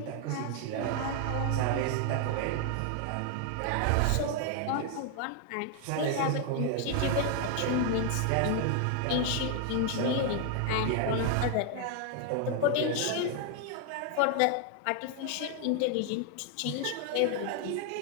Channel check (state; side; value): different; both; correlation 0.00